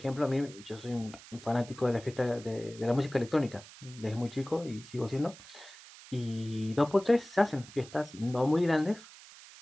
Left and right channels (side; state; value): right; noise; hiss, 19 dB below the sound